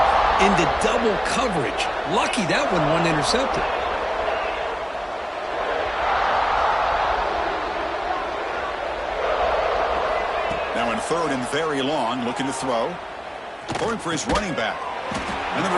into double coverage. Lucky that one wasn't intercepted. Now in 3rd and very long, looking to throw. Going for his running back. And the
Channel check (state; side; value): identical; both; correlation 1.00